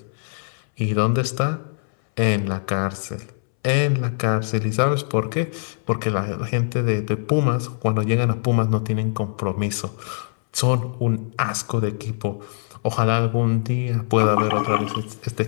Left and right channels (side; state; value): right; silent; 64 dB below the other